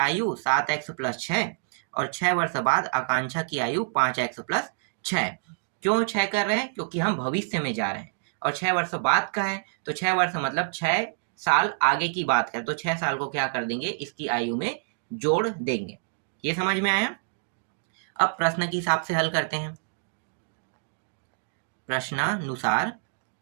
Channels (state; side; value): silent; left; digital silence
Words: 7x + 6 और 6 वर्ष बाद आकांक्षा की आयु 5x + 6। क्यों 6 कर रहे हैं? क्योंकि हम भविष्य में जा रहे हैं और 6 वर्ष बाद का है, तो 6 वर्ष मतलब 6 साल आगे की बात करें, तो 6 साल को क्या कर देंगे, इसकी आयु में जोड़ देंगे। ये समझ में आया? अब प्रश्न के हिसाब से हल करते हैं। प्रश्नानुसार